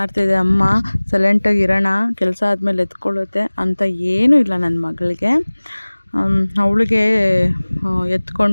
ಅಮ್ಮ, ಸೈಲೆಂಟಾಗಿ ಇರೋಣ, ಕೆಲಸ ಆದಮೇಲೆ ಎತ್ಕೊಳ್ಳುತ್ತೆ ಅಂತ ಏನೂ ಇಲ್ಲ ನನ್ನ ಮಗಳಿಗೆ. ಅವಳಿಗೆ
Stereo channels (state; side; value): inverted; both; correlation -1.00